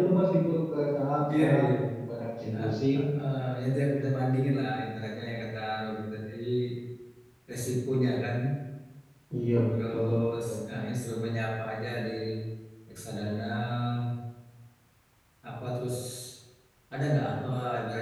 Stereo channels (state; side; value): identical; both; correlation 1.00